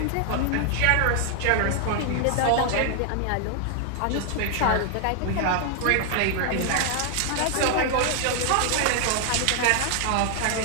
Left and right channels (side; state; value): both; different; correlation 0.00